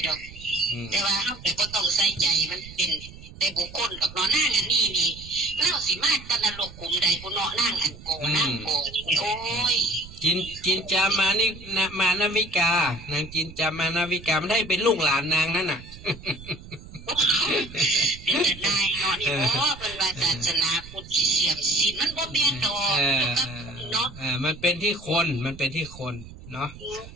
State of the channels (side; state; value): right; noise; rumble, 17 dB below the sound